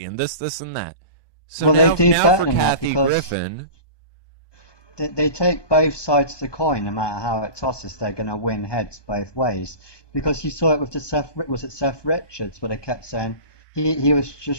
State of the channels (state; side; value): late; right; 1.2 ms